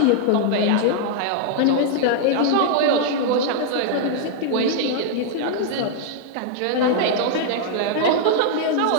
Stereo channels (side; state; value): both; different; correlation -0.01